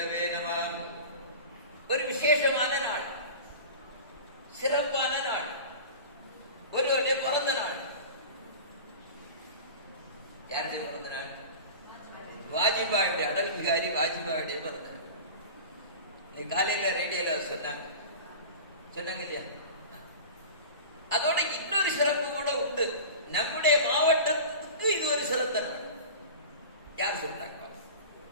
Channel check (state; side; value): inverted; both; correlation -0.34